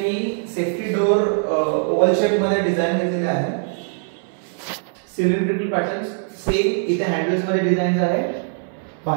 सेफ्टी डोर ओव्हल शेप मध्ये डिझाइन केलेले आहे। सिलेंड्रिकल पॅटर्न्स सेम इथे हँडल्स मध्ये डिझाइन आहे।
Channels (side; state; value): left; silent; 62 dB below the other